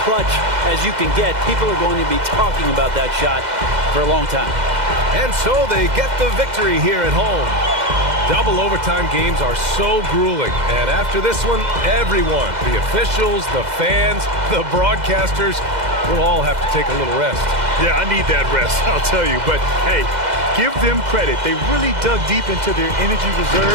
clutch as you can get. People are going to be talking about that shot for a long time. And so they get the victory here at home. Double overtime games are so grueling. And after this one, everyone, the officials, the fans, the broadcasters, we'll all have to take a little rest. Yeah, I need that rest, I'll tell you. But, hey, give them credit. They really dug deep into their energy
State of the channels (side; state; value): left; late; 2.0 ms